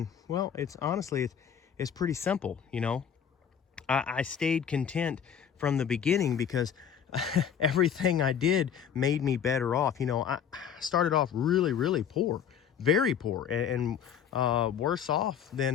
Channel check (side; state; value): right; quieter; 8.1 dB